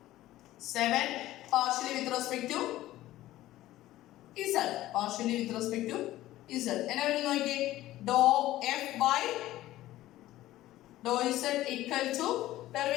7 partially with respect to z. Partially with respect to z. എന്നാ വരും നോക്കിയേ? dou f by dou z equal to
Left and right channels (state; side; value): quieter; right; 15.3 dB